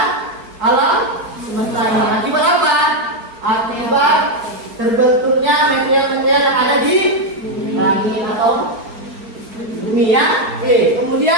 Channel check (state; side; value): late; left; 4.4 ms